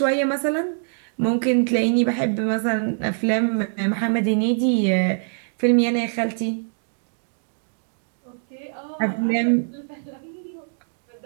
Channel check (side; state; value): left; silent; 60 dB below the other